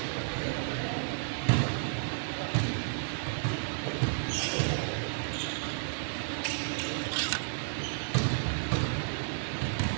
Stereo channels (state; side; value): silent; left; 56 dB below the other